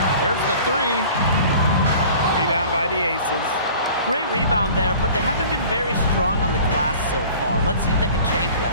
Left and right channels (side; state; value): both; inverted; correlation -0.45